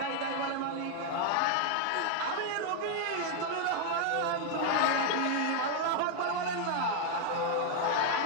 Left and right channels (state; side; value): different; both; correlation 0.00